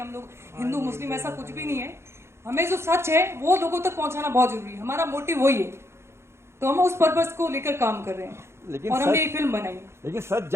लोग हिंदू मुस्लिम, ऐसा कुछ भी नहीं है। हमें जो सच है वो लोगों तक पहुंचाना बहुत जरूरी है, हमारा मोटिव वही है, तो हम उस पर्पस को लेकर काम कर रहे हैं और हमने एक फिल्म बनाई। लेकिन सच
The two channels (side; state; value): left; late; 0.13 ms